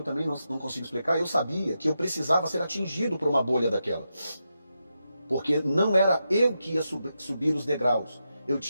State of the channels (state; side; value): inverted; both; correlation -0.87